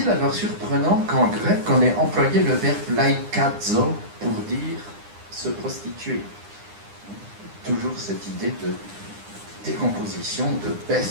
alors surprenant qu'en grec, on ait employé le verbe laikazo pour dire se prostituer? Toujours cette idée de décomposition, de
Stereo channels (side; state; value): left; late; 9.8 ms